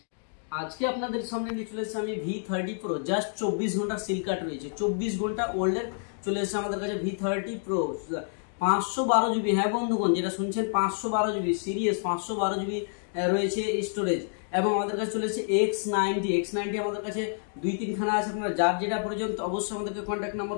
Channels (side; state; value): right; silent; digital silence